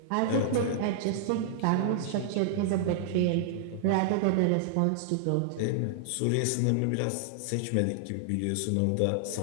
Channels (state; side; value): different; both; correlation -0.01